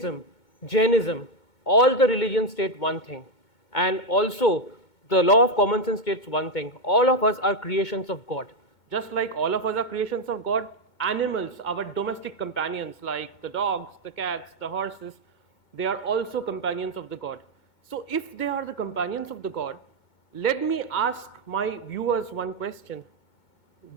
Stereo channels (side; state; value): right; late; 2.2 ms